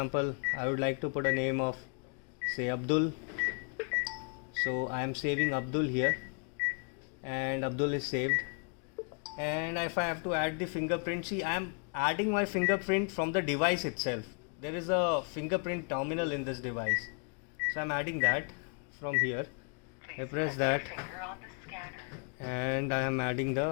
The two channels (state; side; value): quieter; right; 37.7 dB